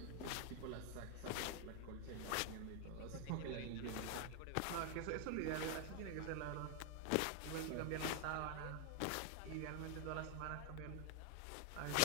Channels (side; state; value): both; different; correlation 0.01